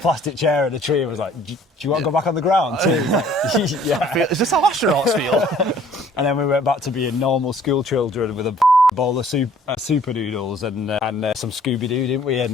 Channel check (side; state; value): both; normal; correlation 0.56